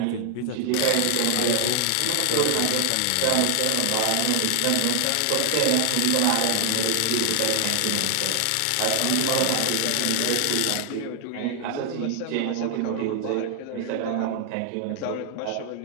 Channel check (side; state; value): both; different; correlation 0.00